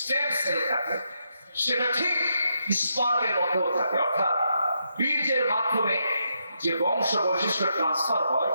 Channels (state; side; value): inverted; both; correlation -0.81